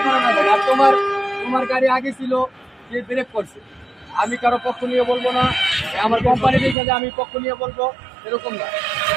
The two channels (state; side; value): drops out; left; at 6.8 s